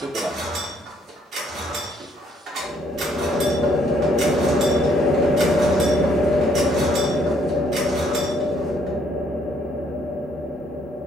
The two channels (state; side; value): normal; both; correlation 0.67